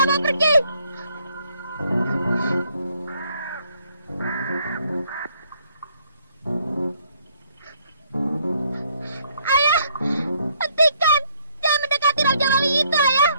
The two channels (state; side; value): inverted; both; correlation -0.67